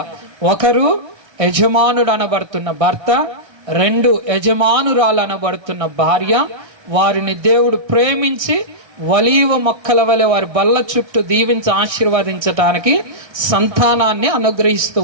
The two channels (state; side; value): late; left; 1.6 ms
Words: ఒకరు యజమానుడు అనబడుతున్న భర్త, 2 యజమానురాలు అనబడుతున్న భార్య. వారిని దేవుడు ప్రేమించి ఒలీవ మొక్కల వలె వారి బల్ల చుట్టూ దీవించి ఆశీర్వదించటానికి సంతానాన్ని అనుగ్రహిస్తూ